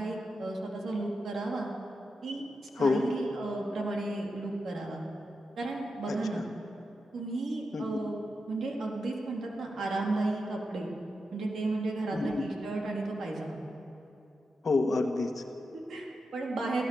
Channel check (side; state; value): both; normal; correlation 0.87